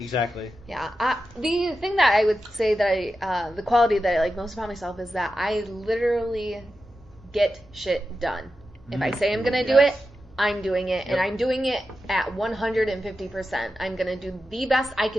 Yeah. The thing that I would say that the quality that I like most about myself is that I literally get shit done. If I say I'm going to do it, I'm doing it. And I'm doing it at 150%. I'm going to do the best I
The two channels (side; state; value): both; normal; correlation 0.91